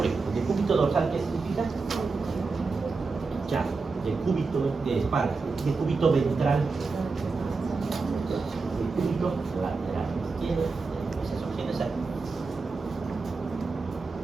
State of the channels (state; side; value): quieter; left; 4.3 dB